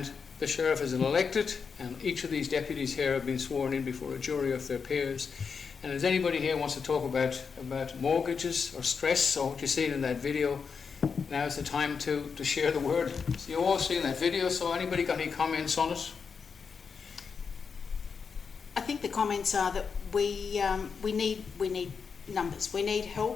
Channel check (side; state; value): right; quieter; 5.8 dB